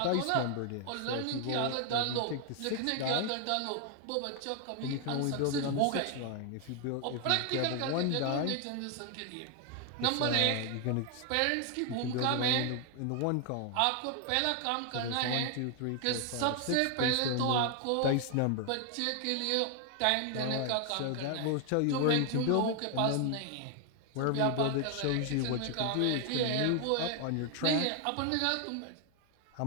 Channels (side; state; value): both; different; correlation 0.00